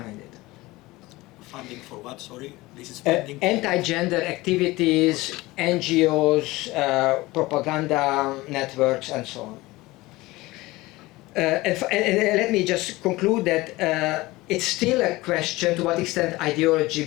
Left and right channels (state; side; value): quieter; right; 20.1 dB